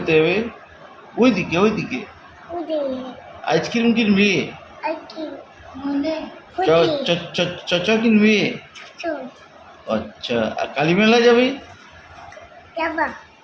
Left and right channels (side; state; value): both; identical; correlation 1.00